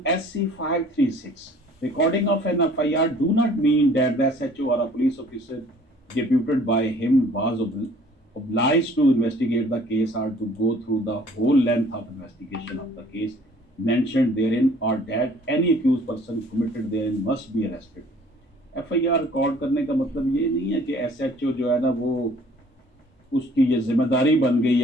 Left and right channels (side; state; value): both; normal; correlation 0.54